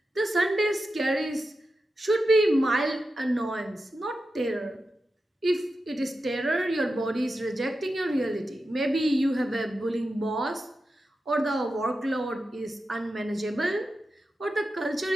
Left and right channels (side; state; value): both; normal; correlation 0.91